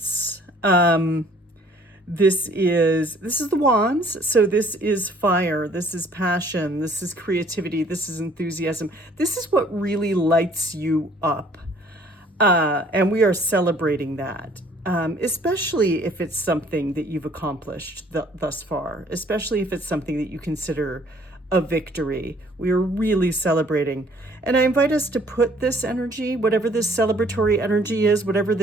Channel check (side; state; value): both; normal; correlation 0.58